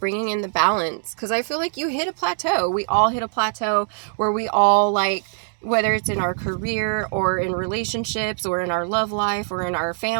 in the balance. Because I feel like you hit a plateau. We all hit a plateau where we all like, whether it's in our career or in relationships or in our love life or in our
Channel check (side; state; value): left; silent; digital silence